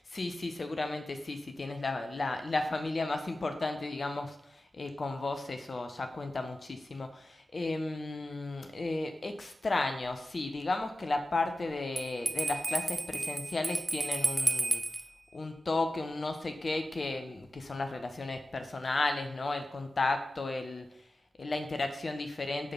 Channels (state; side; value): normal; both; correlation 0.94